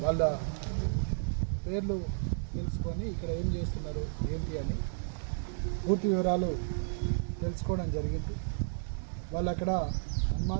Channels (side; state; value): left; silent; 56 dB below the other